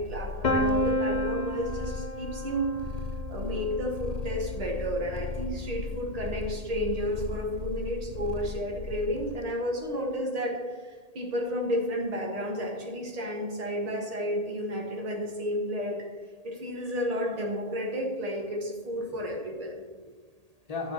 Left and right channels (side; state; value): left; late; 1.8 ms